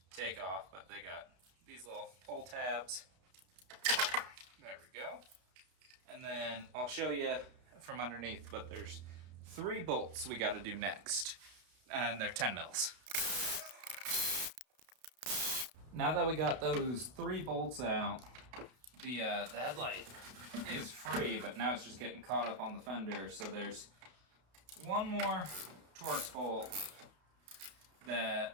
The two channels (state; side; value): late; left; 32 ms